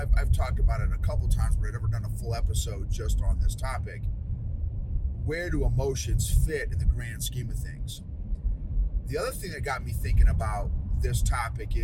talked about it a couple times, but I've never done a full episode just on this topic. Where do emotions fit in the grand scheme of things? The other thing that got me thinking about this topic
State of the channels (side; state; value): both; identical; correlation 1.00